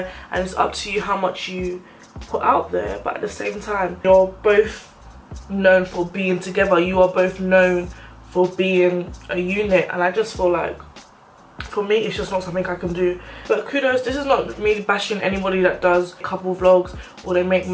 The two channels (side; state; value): both; identical; correlation 1.00